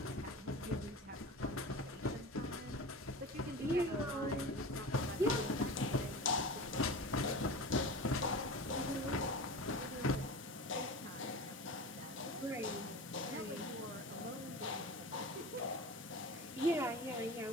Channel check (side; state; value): both; normal; correlation 0.31